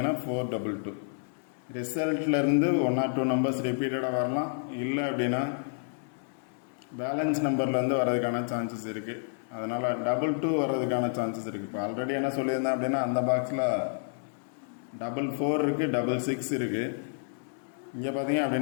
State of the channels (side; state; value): right; silent; digital silence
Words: 422. ரிசல்ட்லேருந்து 1 or 2 நம்பர்ஸ் ரிப்பீட்டடாக வரலாம். இல்லை அப்படின்னா பேலன்ஸ் நம்பர்லேருந்து வர்றதுக்கான சான்சஸ் இருக்குது. அதனால் 22 வர்றதுக்கான சான்சஸ் இருக்குது. இப்போ ஆல்ரெடி என்ன சொல்லியிருந்தேன் அப்படின்னா அந்த பாக்ஸில் 44 இருக்குது, 66 இருக்குது. இங்கே பார்த்தீங்க